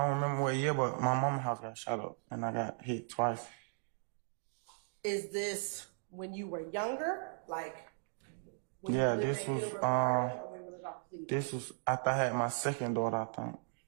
don't remember what year, but my mama's house got shot up and I got hit twice. Is this when you were younger? Like, when Yeah, you lived this in was, Gilbert Park, or when you lived off Cleveland? This was after I had my second daughter, I think.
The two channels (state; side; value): silent; left; digital silence